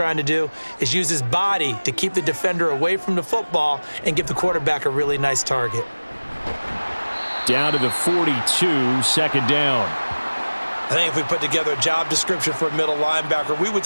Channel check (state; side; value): inverted; both; correlation -1.00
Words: to do is use his body to keep the defender away from the football and give the quarterback a really nice target. Down to the 42, second down. I think if we put together a job description for a middle linebacker, we would